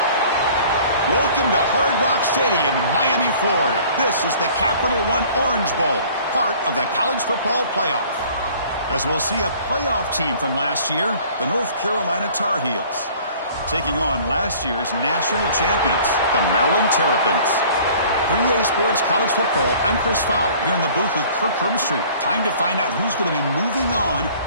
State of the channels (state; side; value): inverted; both; correlation -0.51